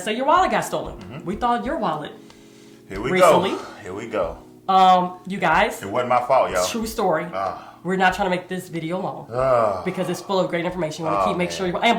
say your wallet got stolen, we thought your wallet. Here we recently. go. Here we go. You guys. It wasn't my fault, y'all. True story. We're not trying to make this video long because it's full of great information. You want to make sure you,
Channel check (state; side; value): identical; both; correlation 1.00